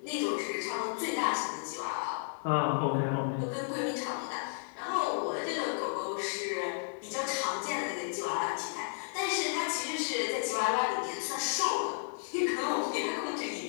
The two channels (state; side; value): silent; right; digital silence